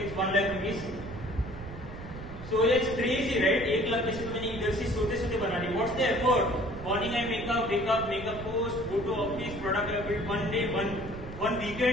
it's 1 lakh rupees. So it's crazy, right? 1 lakh पैसे तो मैंने इधर से सोते बना ली. What's the effort? Morning I wake up, make a post, go to office, product I built one day, one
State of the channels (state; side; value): noise; right; rumble, 12 dB below the sound